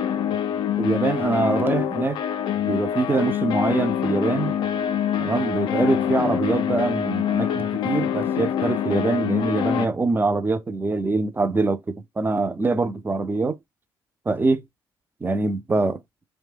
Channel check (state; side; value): normal; both; correlation 0.68